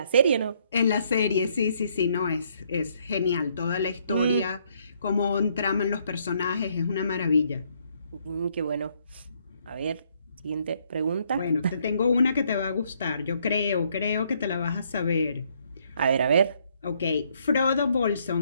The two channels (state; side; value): inverted; both; correlation -0.69